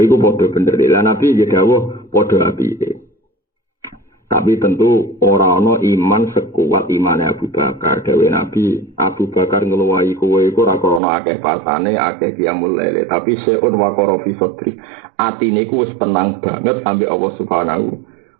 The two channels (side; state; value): left; drops out; at 11.0 s